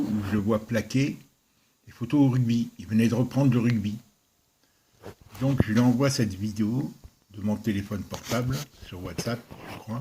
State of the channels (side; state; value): both; identical; correlation 1.00